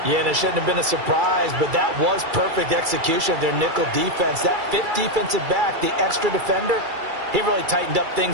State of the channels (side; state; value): left; late; 2.3 ms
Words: Yeah, and it shouldn't have been a surprise, but that was perfect execution of their nickel defense. That 5th defensive back, the extra defender, he really tightened up